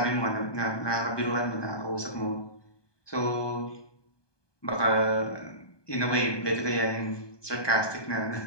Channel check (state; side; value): late; right; 1.2 ms